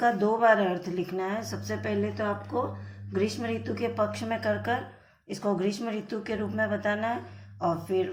2 बार अर्थ लिखना है। सबसे पहले तो आपको ग्रीष्म ऋतु के पक्ष में कर इसको ग्रीष्म ऋतु के रूप में बताना है, और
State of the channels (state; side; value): identical; both; correlation 1.00